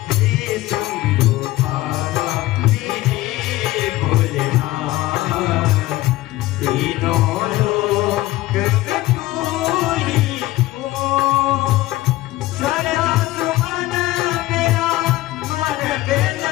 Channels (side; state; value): right; quieter; 17.4 dB